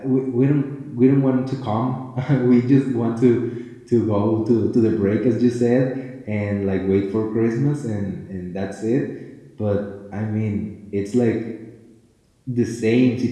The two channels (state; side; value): identical; both; correlation 1.00